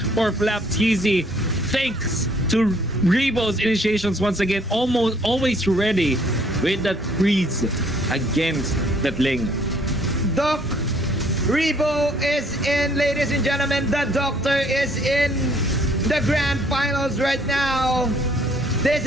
Flap TZ. Thanks to Rebo's initiations once again. Always ready with that freeze against that Ling. Doc Rebo is in, ladies and gentlemen. The Doctor is in the grand finals right now. This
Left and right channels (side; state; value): both; normal; correlation 0.62